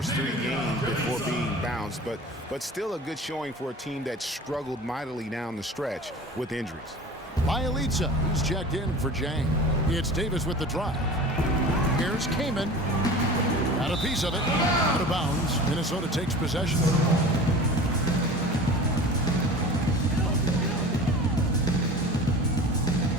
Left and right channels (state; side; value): normal; both; correlation 0.38